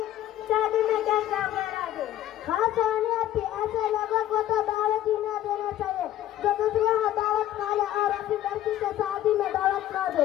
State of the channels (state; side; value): quieter; right; 13.0 dB